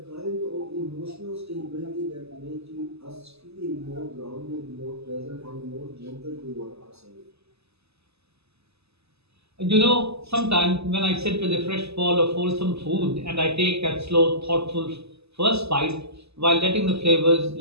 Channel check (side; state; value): left; late; 0.79 ms